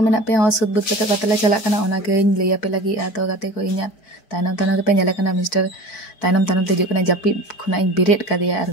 pia hosud but kata kata celak kana ona ge lay ape lagi atau kata ko inyat tanam te nyala kana mister tanam te juk kana japi khuna in biret kadiya ar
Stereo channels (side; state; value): right; late; 4.6 ms